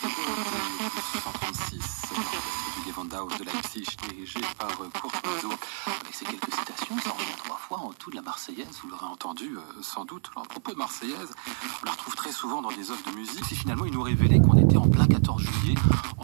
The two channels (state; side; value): silent; left; 59 dB below the other